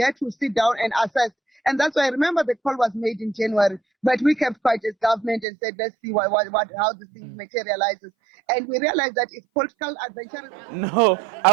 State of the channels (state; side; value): drops out; left; at 5.5 s